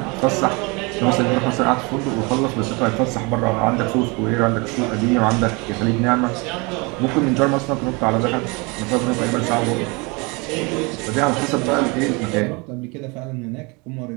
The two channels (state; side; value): quieter; left; 28.2 dB